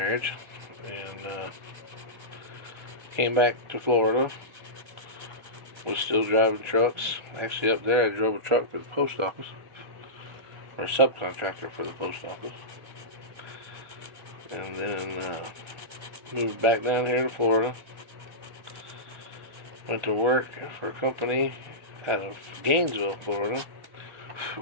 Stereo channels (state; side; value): late; left; 1.4 ms